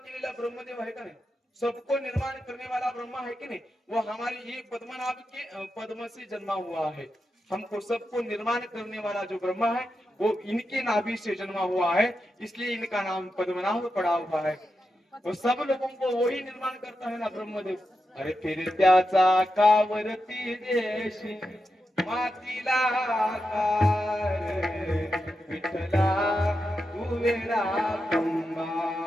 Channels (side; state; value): both; normal; correlation 0.88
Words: ब्रह्मदेव आहे का नाही, सबको निर्माण करने वाला ब्रह्मा है कि नहीं, वो हमारी ये पद्मनाभ के पद्म से जन्मा हुआ है. हमको सबको निर्माण करने वाला जो ब्रह्मा है वो इनके नाभि से जन्मा हुआ है, इसलिए इनका नाम पद्मनाभ पड़ा हुआ है. वो सब लोगों को वही निर्माण करता है ना ब्रह्मदेव. अरे फिर त्याचा कावरती देशी मातीला विठ्ठला तू वेडा